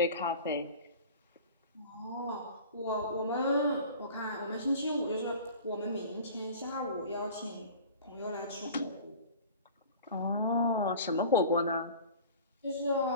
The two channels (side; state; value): both; inverted; correlation -0.41